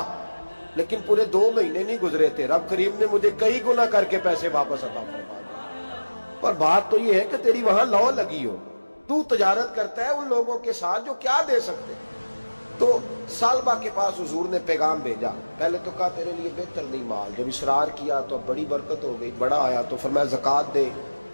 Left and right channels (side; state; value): both; inverted; correlation -1.00